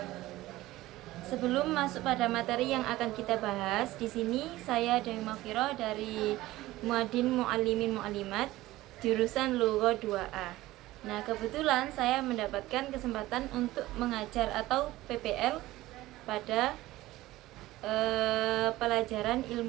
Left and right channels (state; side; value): quieter; left; 17.1 dB